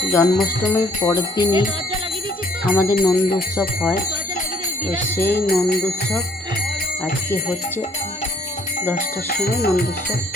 জন্মাষ্টমীর পরের দিনই আমাদের নন্দ উৎসব হয়। তো সেই নন্দ উৎসব আজকে হচ্ছে 10টার সময় নন্দ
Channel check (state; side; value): normal; both; correlation 0.61